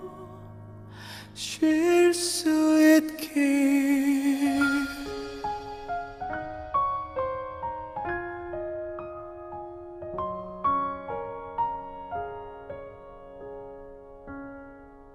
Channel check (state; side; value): identical; both; correlation 1.00